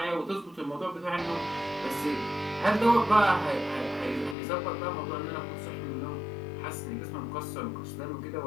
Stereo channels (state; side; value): drops out; right; at 4.4 s